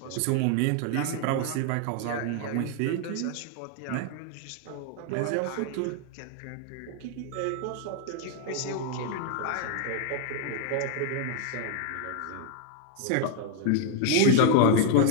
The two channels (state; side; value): different; both; correlation 0.00